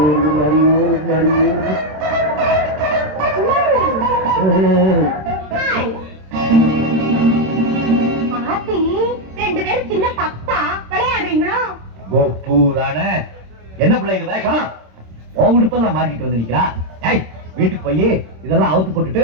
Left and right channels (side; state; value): left; late; 26 ms